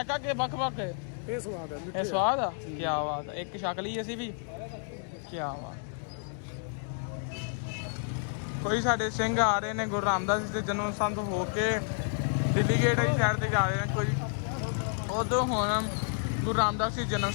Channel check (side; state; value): right; silent; 58 dB below the other